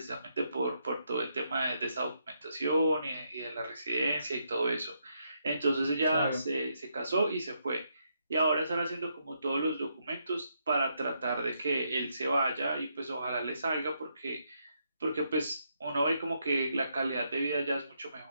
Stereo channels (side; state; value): both; inverted; correlation -0.78